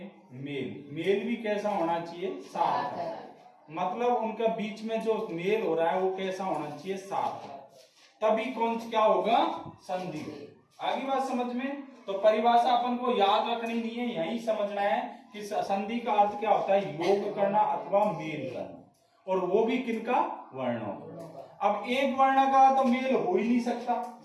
मेल भी कैसा होना चाहिए? सार्थक। मतलब उनका बीच में जो मेल हो रहा है वो कैसा होना चाहिए? सार्थक। तभी कौन क्या होगा? संधि होगी। आगे बात समझ में? तो परिभाषा अपन को याद रखनी नहीं है, यही समझना है कि संधि का अर्थ क्या होता है? योग करना अथवा मेल करना, और वो भी किनका? वर्णों। अब एक वर्ण का तो मेल हो ही नहीं सकता।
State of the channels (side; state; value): both; identical; correlation 1.00